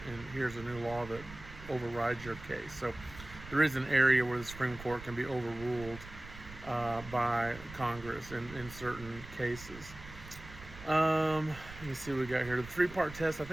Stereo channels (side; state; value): right; noise; rumble, 15 dB below the sound